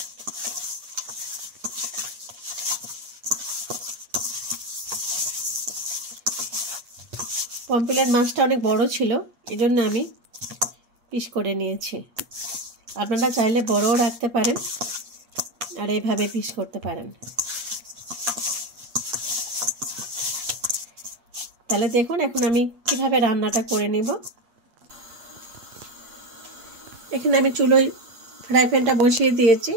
পমফ্রেট মাছটা অনেক বড় ছিল, এজন্য আমি পিস করে নিয়েছি। আপনারা চাইলে বড়ও রাখতে পারেন আর এইভাবে পিস করতে পারেন। তাহলে দেখুন এখন আমি কিভাবে রান্নাটা করে নেব। এখানে আমি চুলোয় ফ্রাই প্যানটা বসিয়ে দিয়েছি।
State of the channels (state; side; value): late; left; 8.5 ms